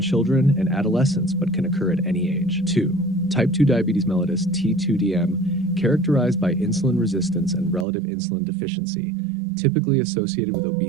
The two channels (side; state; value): left; drops out; at 7.9 s